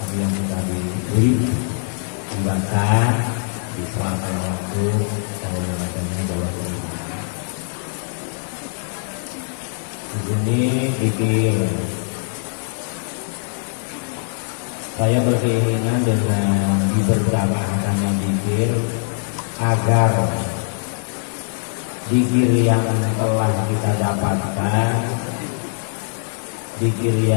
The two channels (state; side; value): silent; right; digital silence